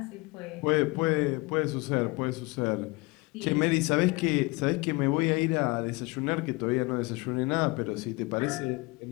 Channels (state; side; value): quieter; right; 25.7 dB